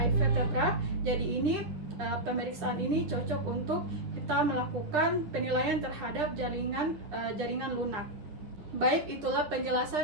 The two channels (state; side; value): late; left; 10 ms